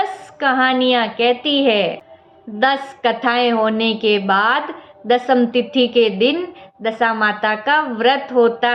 कहानियाँ कहती है। 10 कथाएं होने के बाद दशम तिथि के दिन दशा माता का व्रत होता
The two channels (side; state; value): both; identical; correlation 1.00